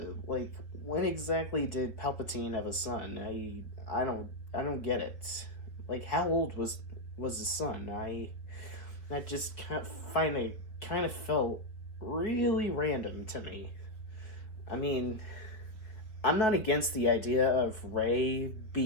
Like, when exactly did Palpatine have a son? I don't get it. Like, how old was his son? That just kind of felt really random to me. I mean, I'm not against the idea of Rey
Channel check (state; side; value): late; right; 4.7 ms